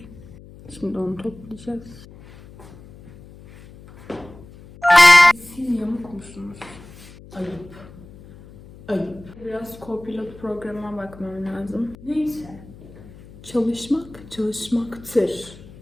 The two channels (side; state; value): left; noise; hum, 20 dB below the sound